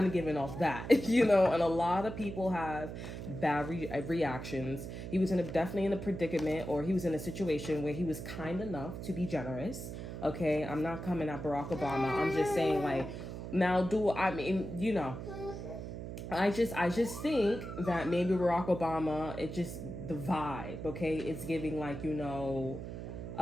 of giving off that, you know, and a lot of people have bad reactions. He was definitely in a predicament, or he was in a situation where he was kind enough to be generous. Okay, I'm not coming at Barack Obama. I'm just saying, like, now I mean, you know, I just think that maybe Barack Obama, it just, the vibe, okay, it's giving like, you know,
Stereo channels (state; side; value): noise; right; hum, 8 dB below the sound